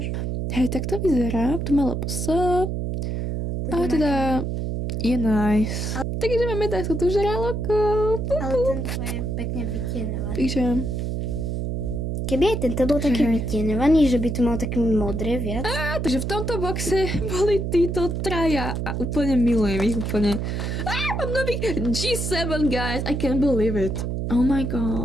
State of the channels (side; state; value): right; noise; hum, 2 dB below the sound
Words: Hej, tak to vyzerá. Tu má LPS. A teda je nice. Takže máme takto tu žraloko. Ale tento je pekne vytienovaný. Takže... Keby aj tento bol taký vytienovaný, že by tu mal také modré viac. Takže v tomto boxe boli títo traja a úplne milujem ich úplne. Mám nový G7, guys. I can't believe it. Oh my